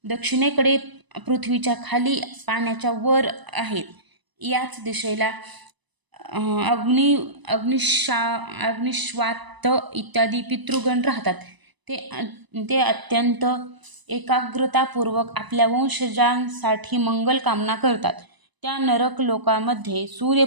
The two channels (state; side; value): late; left; 1.0 ms